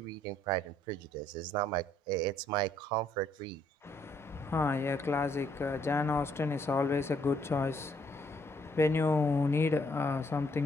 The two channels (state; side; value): normal; both; correlation 0.68